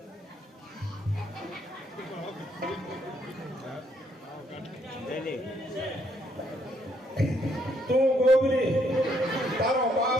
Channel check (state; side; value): normal; both; correlation 0.71